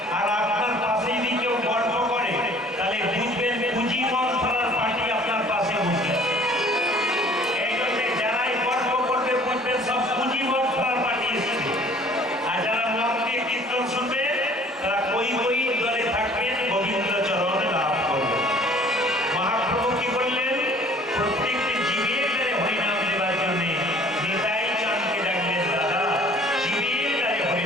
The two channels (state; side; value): normal; both; correlation 0.53